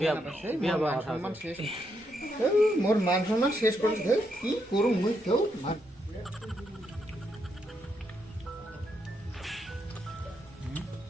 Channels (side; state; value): both; normal; correlation 0.79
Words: বিয়া বা কথা সম্মান আছে। শেষ মোর মান সম্মান শেষ করে দে কি করু মুই কেউ